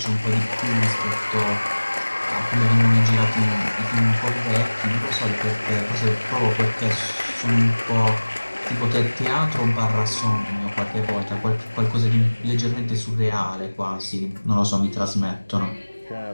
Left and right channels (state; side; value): inverted; both; correlation -1.00